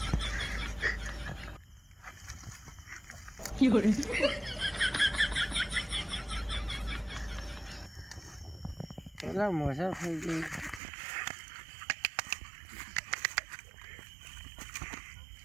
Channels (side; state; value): left; drops out; at 10.8 s